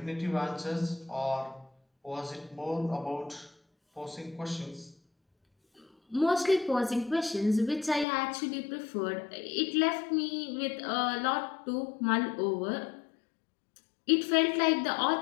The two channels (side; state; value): right; drops out; at 8.1 s